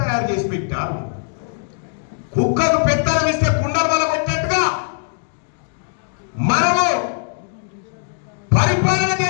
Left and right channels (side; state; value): right; silent; digital silence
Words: చేసి పెట్టారు. కుక్కకు పెత్తనం ఇస్తే కుండలు వల్ల కొట్టినట్టుగా మనము పరిపాలన